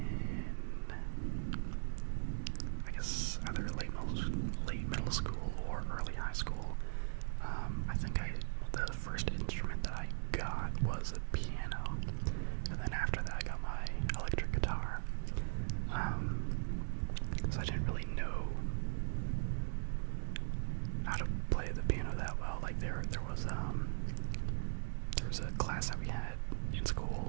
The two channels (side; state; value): left; silent; digital silence